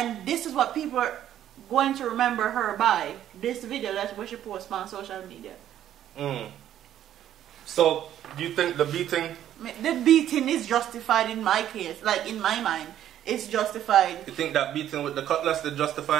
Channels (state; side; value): quieter; left; 11.3 dB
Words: this is what people are going to remember her by. This video that's what she posts on social media. So, do you think the beating? The beating is justified in my case. Like, in my mind, it's justified. You think that beating with the cutlass is